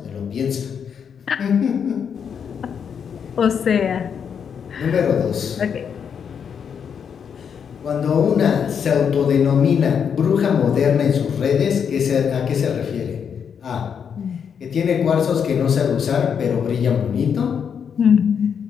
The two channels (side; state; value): right; quieter; 7.3 dB